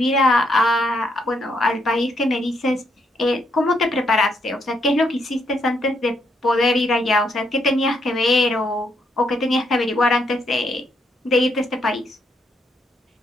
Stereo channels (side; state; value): both; normal; correlation 0.75